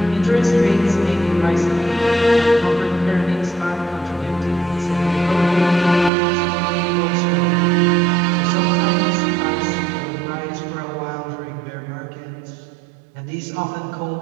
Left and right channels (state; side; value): drops out; left; at 6.1 s